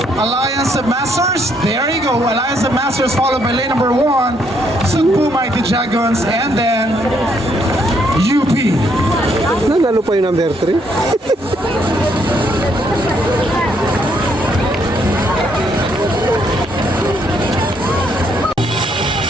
Alliance of Masters. There you go, Alliance of Masters followed by lane number 1, Cebu Mighty Dragons, and then UP. Nanalo pa yung number 3.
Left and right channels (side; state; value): both; normal; correlation 0.71